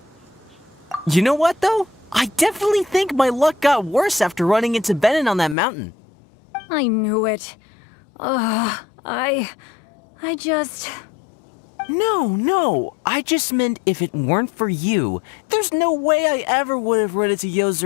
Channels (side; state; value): right; drops out; at 5.6 s